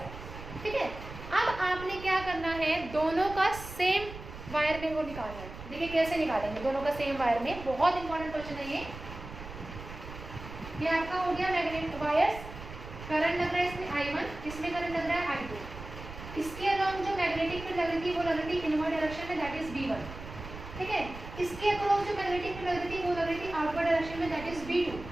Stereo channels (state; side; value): noise; right; rumble, 12 dB below the sound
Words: ठीक है। अब आपने क्या करना है, दोनों का सेम वायर में वो निकालना है। देखिए कैसे निकालेंगे दोनों का सेम वायर में, बहुत इंपॉर्टेंट क्वेश्चन है ये आपका हो गया मैग्नेटिक वायर्स, करंट लग रहा है इसमें I1, इसमें करंट लग रहा है I2, इसके अलावा जो मैग्नेटिक फील्ड लग रही थी वो लग रही थी इनवर्ड डायरेक्शन में, दैट इज B1, ठीक है। इसके अक्रॉस जो मैग्नेटिक फील्ड लग रही थी वो लग रही थी आउटवर्ड डायरेक्शन में, दैट इज B2,